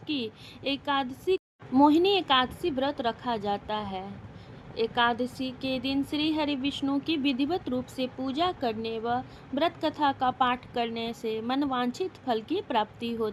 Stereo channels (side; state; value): both; identical; correlation 1.00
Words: एकादशी मोहिनी एकादशी व्रत रखा जाता है। एकादशी के दिन श्री हरि विष्णु की विधिवत रूप से पूजा करने व व्रत कथा का पाठ करने से मनवांछित फल की प्राप्ति